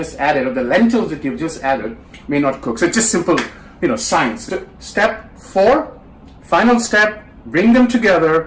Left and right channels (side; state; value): both; identical; correlation 1.00